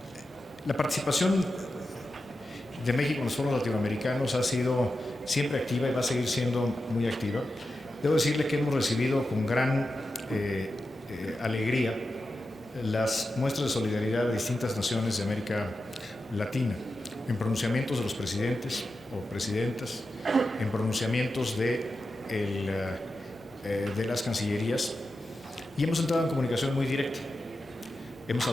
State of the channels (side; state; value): both; normal; correlation 0.91